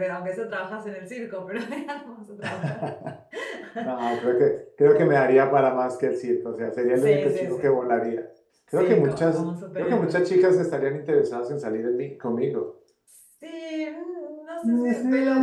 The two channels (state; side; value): identical; both; correlation 1.00